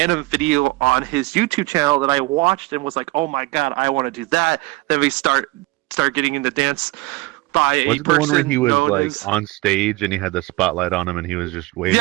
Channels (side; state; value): left; quieter; 21.8 dB